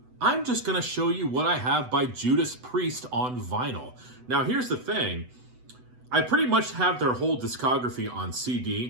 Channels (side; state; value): left; late; 8.0 ms